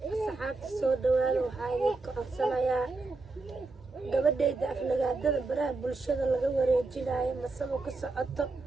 saxaabta soo dhawaada waxaa idinka codsanayaa gabadhayda aflagaadada baraha bulshada laga wareejinayo masabo ka socoto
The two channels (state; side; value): quieter; left; 3.5 dB